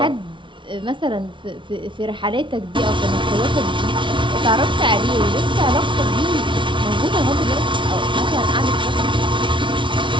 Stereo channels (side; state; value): left; late; 0.24 ms